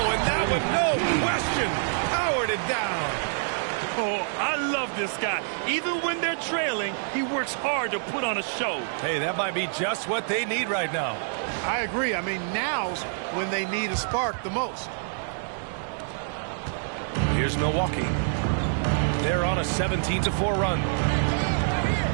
and that one, no question, powered it down. Oh, I love this guy. Even when they're trailing, he works hard to put on a show. Hey, that might be just what they need right now. I agree. I mean, now's when they need a spark the most. Here's Milwaukee. They're on a 17-4 run.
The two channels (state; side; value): silent; left; 61 dB below the other